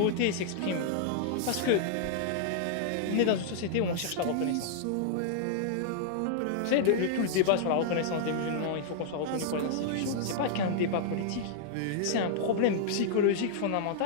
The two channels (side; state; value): both; different; correlation -0.01